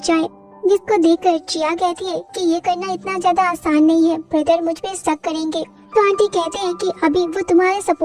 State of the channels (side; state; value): both; identical; correlation 1.00